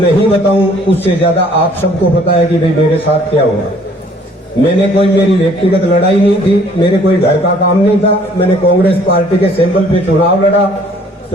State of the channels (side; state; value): both; normal; correlation 0.58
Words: बताऊं, उससे ज्यादा आप सबको पता है कि भाई मेरे साथ क्या हुआ। मैंने कोई मेरी व्यक्तिगत लड़ाई नहीं थी, मेरे कोई घर का काम नहीं था। मैंने कांग्रेस पार्टी के सिंबल पे चुनाव लड़ा,